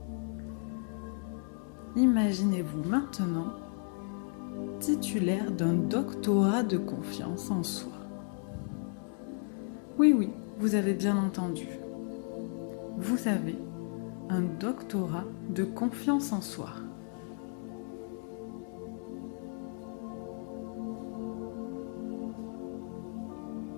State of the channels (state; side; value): silent; right; 55 dB below the other